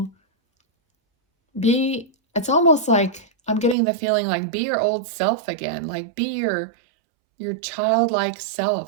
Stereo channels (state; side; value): drops out; left; at 3.8 s